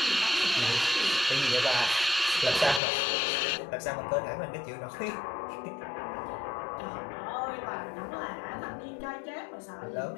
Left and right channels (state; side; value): drops out; right; at 2.8 s